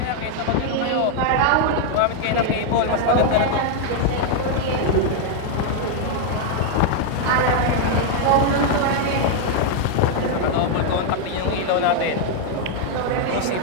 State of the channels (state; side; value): different; both; correlation 0.00